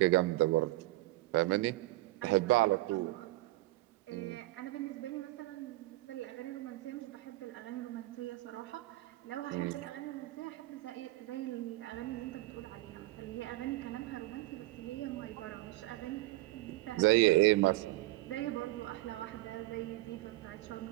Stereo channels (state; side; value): quieter; left; 18.9 dB